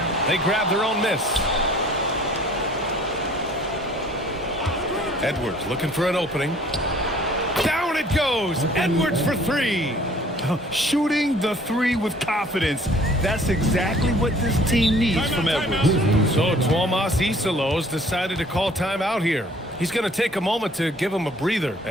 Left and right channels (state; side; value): normal; both; correlation 0.54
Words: They grab their own miss. Edwards looking for an opening. Down it goes. Edwards for three. Shooting the three with confidence. That's exactly what this team needs from Edwards. So Tuomas Isalos decided to call timeout here. He's going to take a moment to give him a breather